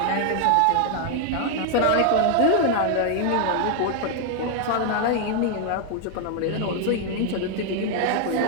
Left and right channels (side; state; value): both; different; correlation 0.00